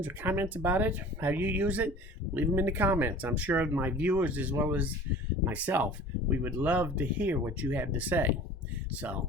or comments about it, how you use it, leave them in the comments. I'm sure my viewers, as well as myself, we would love to hear what you have to say.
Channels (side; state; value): both; normal; correlation 0.43